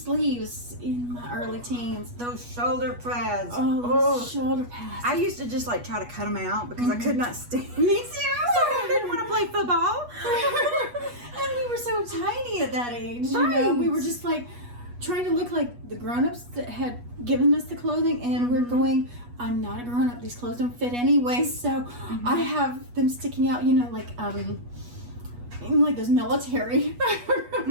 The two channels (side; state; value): left; late; 8.3 ms